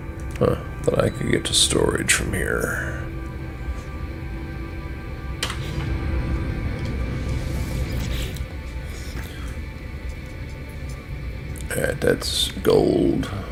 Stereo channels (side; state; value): both; identical; correlation 1.00